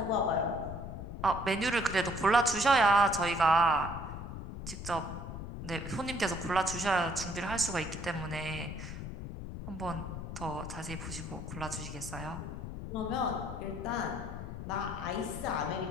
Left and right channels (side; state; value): left; noise; rumble, 8 dB below the sound